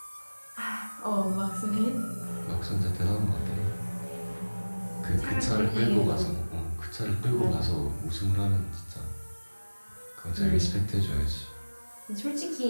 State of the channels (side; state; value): both; inverted; correlation -1.00